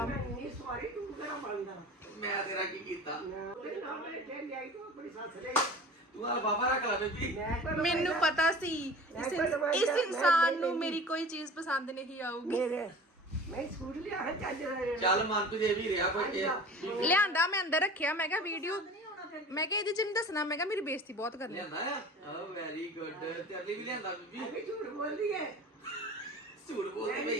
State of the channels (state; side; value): normal; both; correlation 0.40